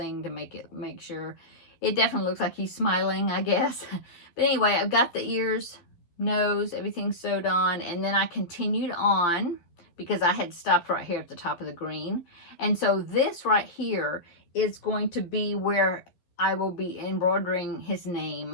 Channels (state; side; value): late; right; 12 ms